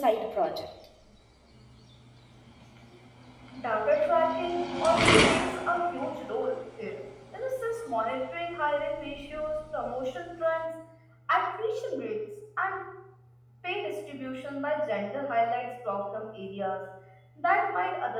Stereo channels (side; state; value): both; identical; correlation 1.00